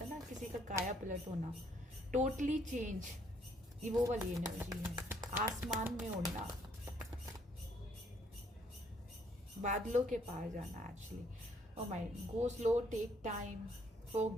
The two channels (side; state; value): both; normal; correlation 0.67